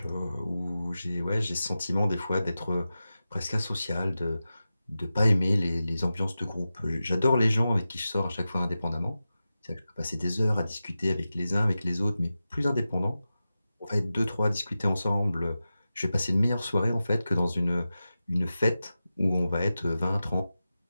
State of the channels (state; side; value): inverted; both; correlation -0.93